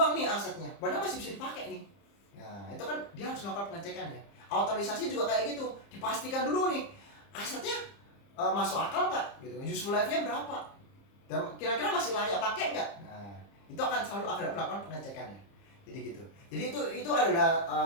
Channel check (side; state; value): right; late; 30 ms